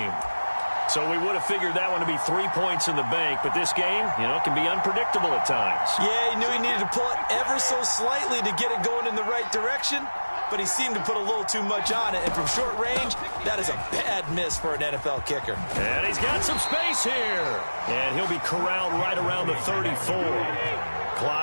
So we would have figured that one to be 3 points in the bank, but this game, can be unpredictable at times. Yeah, he knew he needed to pull it ever so slightly to get it going in the right direction, but he seemed to put a little too much on it, and from short range, that is a bad miss for an NFL kicker. And he's got some space here, and he'll be corralled right around the 34.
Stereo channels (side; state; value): both; inverted; correlation -1.00